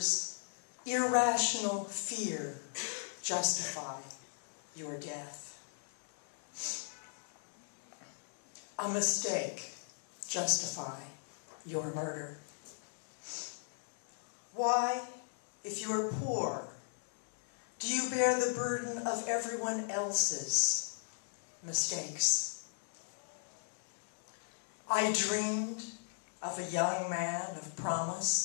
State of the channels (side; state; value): right; silent; digital silence